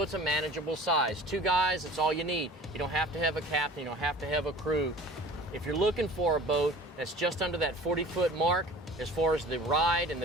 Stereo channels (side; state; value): both; normal; correlation 0.43